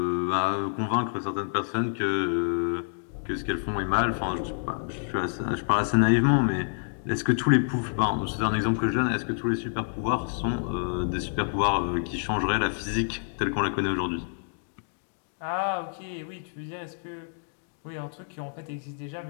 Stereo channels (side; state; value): right; silent; digital silence